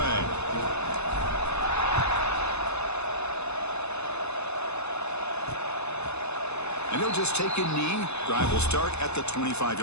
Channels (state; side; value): late; right; 0.80 ms